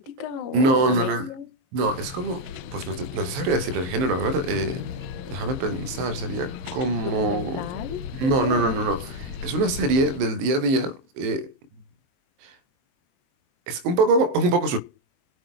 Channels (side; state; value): left; late; 22 ms